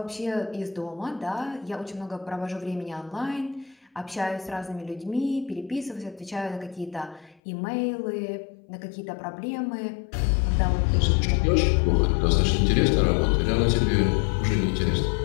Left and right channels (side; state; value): right; drops out; at 7.4 s